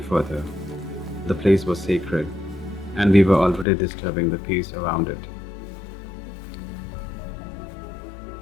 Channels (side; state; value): right; drops out; at 3.7 s